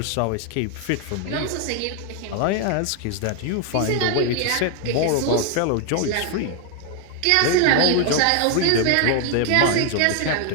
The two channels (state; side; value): different; both; correlation 0.00